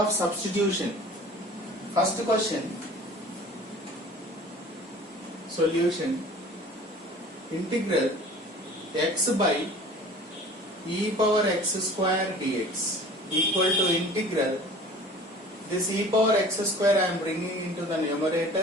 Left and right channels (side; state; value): both; normal; correlation 0.45